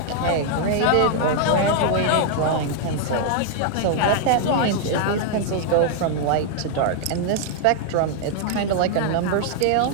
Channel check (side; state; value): both; different; correlation 0.00